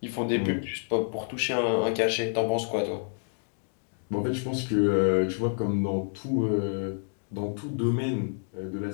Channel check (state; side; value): silent; right; digital silence